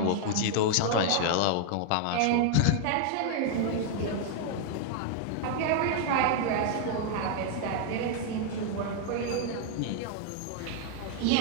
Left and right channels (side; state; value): both; different; correlation 0.00